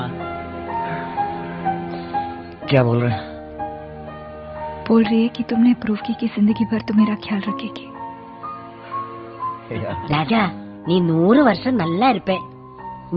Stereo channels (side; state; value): both; identical; correlation 1.00